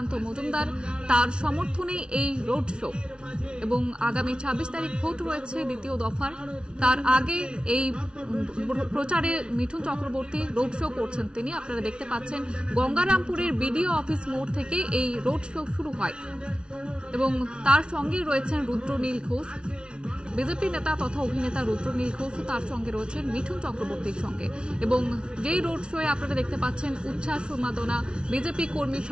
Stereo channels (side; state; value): left; late; 0.056 ms